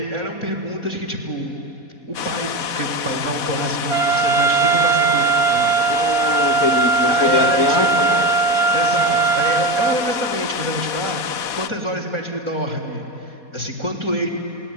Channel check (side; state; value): right; late; 4.2 ms